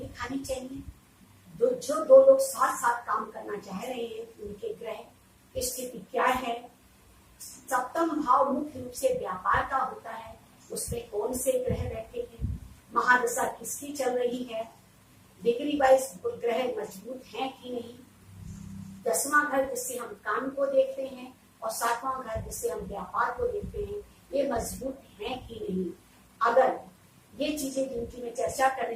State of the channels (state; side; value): identical; both; correlation 1.00